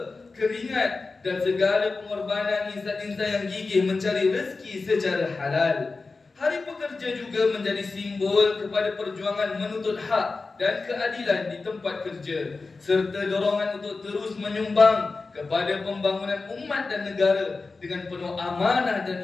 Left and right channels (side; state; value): right; quieter; 3.9 dB